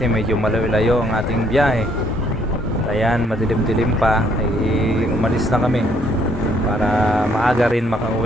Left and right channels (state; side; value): normal; both; correlation 0.67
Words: medyo malayo-layo ang ating biyahe. Ayan, madilim-dilim pa ay umalis na kami para maaga rin